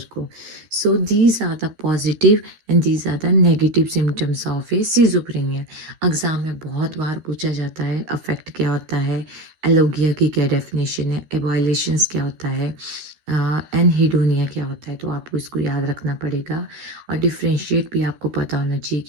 को। So these are the positive and these are the negative symptoms of a schizophrenia. Exam में बहुत बार पूछा जाता है अफेक्ट क्या होता है, एलोगिया की क्या डेफिनेशन है, एबॉयलेशंस क्या होता है, एनहिडोनिया क्या होता है। तो आपको इसको याद रखना पड़ेगा और डिफ्रेंशिएट भी आपको पता होना चाहिए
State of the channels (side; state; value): left; late; 13 ms